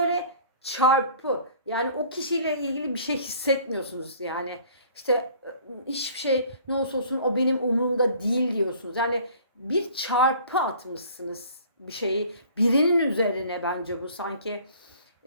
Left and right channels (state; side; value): inverted; both; correlation -0.52